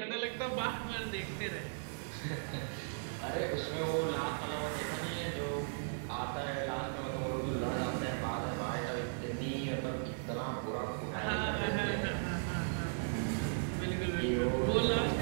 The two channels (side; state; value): left; silent; 53 dB below the other